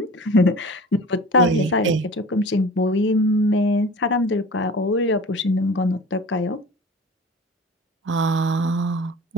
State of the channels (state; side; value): normal; both; correlation 0.40